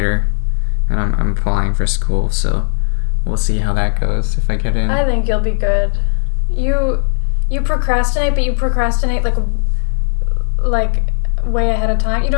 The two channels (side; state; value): right; silent; digital silence